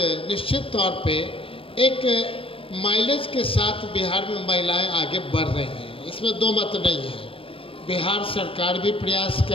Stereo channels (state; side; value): late; right; 0.26 ms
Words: निश्चित तौर पे एक माइलेज के साथ बिहार में महिलाएं आगे बढ़ रही हैं, इसमें दो मत नहीं है। बिहार सरकार भी प्रयास